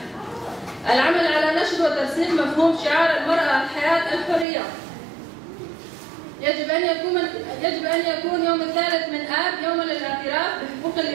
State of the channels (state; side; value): drops out; left; at 4.5 s